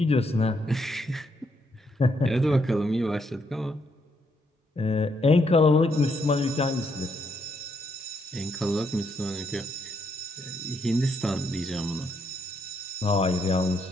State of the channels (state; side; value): normal; both; correlation 0.76